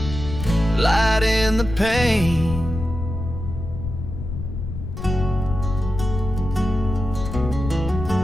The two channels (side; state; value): left; noise; rumble, 6 dB below the sound